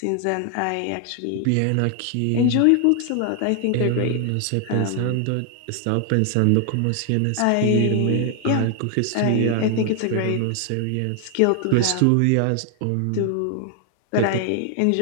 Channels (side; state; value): both; different; correlation 0.00